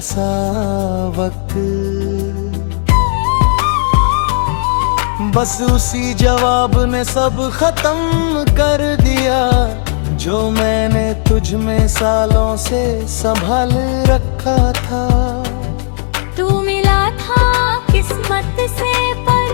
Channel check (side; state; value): right; silent; digital silence